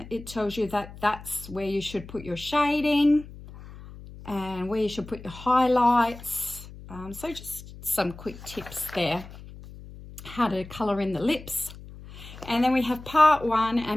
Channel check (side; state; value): left; noise; hum, 16 dB below the sound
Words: it tells you that that's where you should put your shading and where you should put your highlights. So just some quick tips there, how to colour in the lips. And then we have part 1